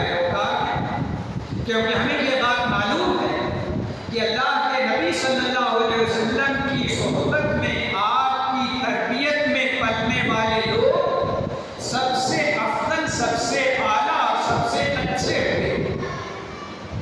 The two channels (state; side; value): identical; both; correlation 1.00